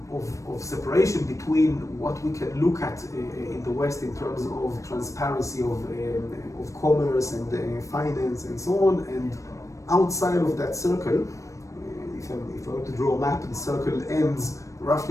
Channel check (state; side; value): late; right; 0.15 ms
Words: of separation between what we can look at in the West in terms of transparency of commerce and finance and so on, and outside of that circle, if I were to draw a map, the circle ends